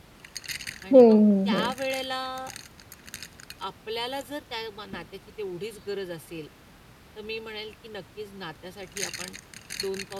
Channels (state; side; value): identical; both; correlation 1.00